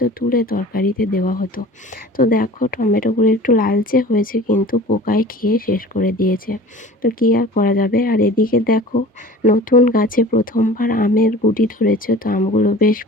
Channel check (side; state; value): both; normal; correlation 0.42